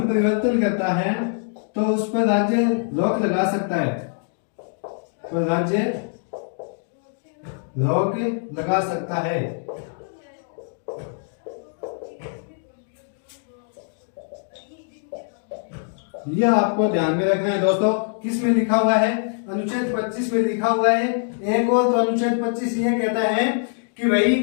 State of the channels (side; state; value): right; silent; digital silence